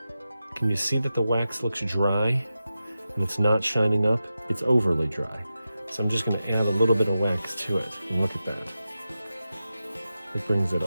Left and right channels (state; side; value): inverted; both; correlation -0.91